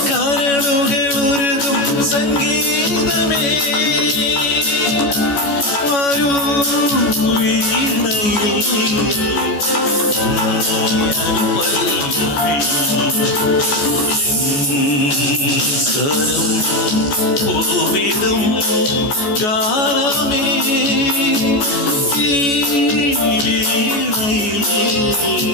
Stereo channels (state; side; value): late; right; 14 ms